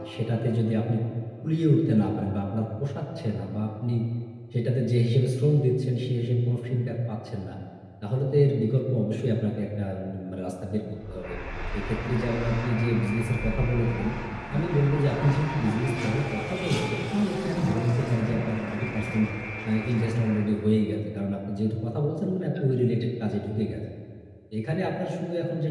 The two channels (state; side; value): identical; both; correlation 1.00